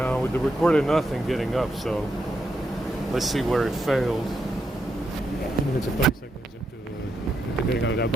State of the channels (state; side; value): normal; both; correlation 0.81